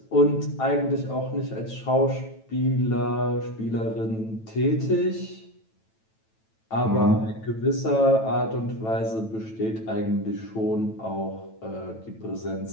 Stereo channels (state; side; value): late; right; 9.1 ms